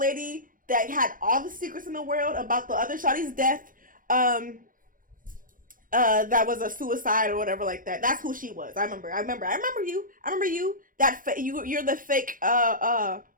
that had all the secrets in the world about the other shawty's death. That was a suicide or whatever like that. That's who she was. I remember you. You're the fake Hawkeye.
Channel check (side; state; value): left; late; 0.40 ms